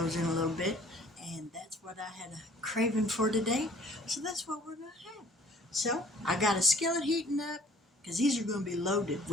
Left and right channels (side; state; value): both; normal; correlation 0.54